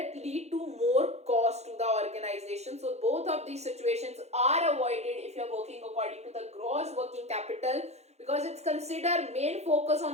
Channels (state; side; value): late; left; 0.31 ms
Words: lead to more cost to the organization. So both of these situations are avoided if you are working according to the gross working capital, because it's considered main focus